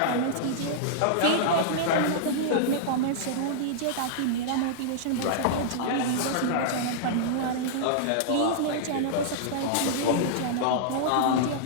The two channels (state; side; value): different; both; correlation -0.02